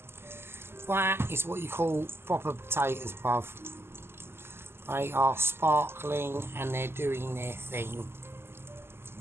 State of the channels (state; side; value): late; left; 0.12 ms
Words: That is what you call proper potatoes, bruv. They are sparkling and they're doing their thing.